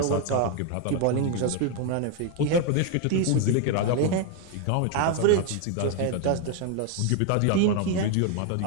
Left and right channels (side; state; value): both; different; correlation 0.01